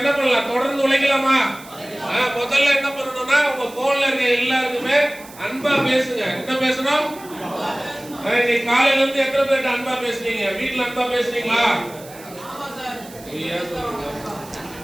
பண்ணலாம்? தொடர்ந்து உழைக்கலாமா? முதல்ல என்ன பண்ணணும்னா உங்க போன்ல இருக்க எல்லாருக்குமே அன்பா பேசுங்க. என்ன பேசணும்? நீ காலையில இருந்து எத்தனை பேர்ட்ட அன்பா பேசுனீங்க? வீட்டுல அன்பா பேசுனீங்களா?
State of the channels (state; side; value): noise; right; hiss, 20 dB below the sound